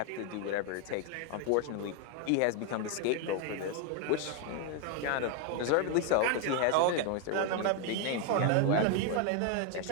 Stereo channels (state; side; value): different; both; correlation 0.01